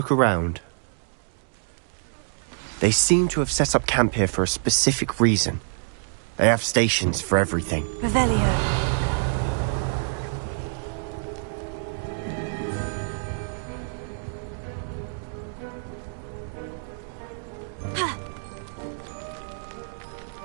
around? They seem to have set up camp here for a specific reason. They have stations for everything. Revelio.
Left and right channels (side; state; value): left; silent; digital silence